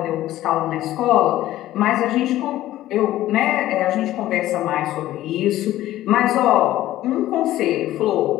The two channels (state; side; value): quieter; right; 14.6 dB